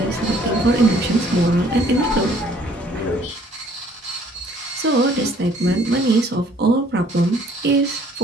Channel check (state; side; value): normal; both; correlation 0.59